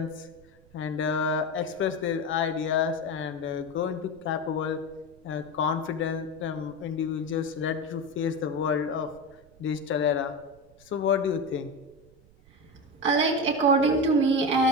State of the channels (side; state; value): right; noise; rumble, 27 dB below the sound